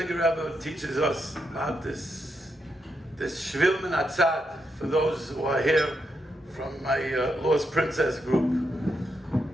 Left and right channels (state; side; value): normal; both; correlation 0.82